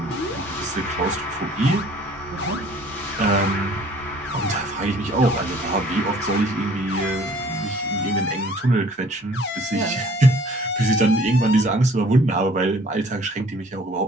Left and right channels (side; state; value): both; normal; correlation 0.54